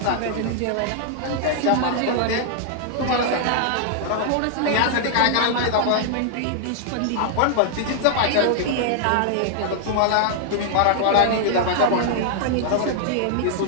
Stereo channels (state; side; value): different; both; correlation -0.01